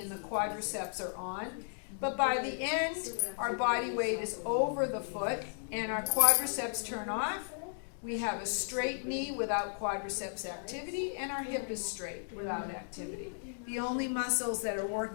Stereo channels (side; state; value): right; silent; digital silence